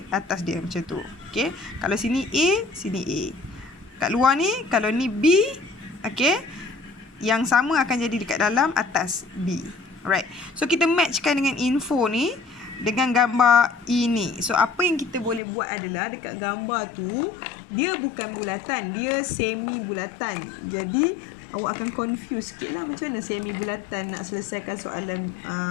Atas dia macam tu. Okey, kalau sini A, sini A. Kat luar ni, kalau ni B, okey, yang sama akan jadi dekat dalam atas B. Alright. So kita matchkan dengan info ni dengan gambar ini. So apa yang kita boleh buat adalah dekat gambar tu dia bukan bulatan, dia semi bulatan. Jadi awak akan confuse sikit lah macam mana semi bulatan nak selesaikan soalan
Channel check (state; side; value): drops out; right; at 15.4 s